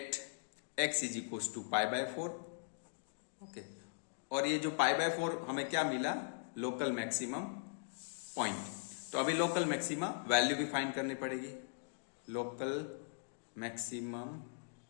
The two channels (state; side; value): silent; right; digital silence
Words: x is equals to π/4। Okay, और ये जो π/4 हमें क्या मिला, लोकल मैक्सिमम पॉइंट। तो अभी लोकल मैक्सिमा वैल्यू भी फाइंड करनी पड़ेगी। लोकल मैक्सिमम